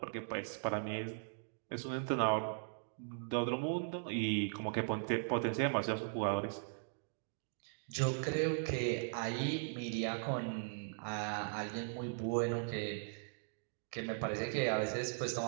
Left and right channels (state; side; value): silent; left; digital silence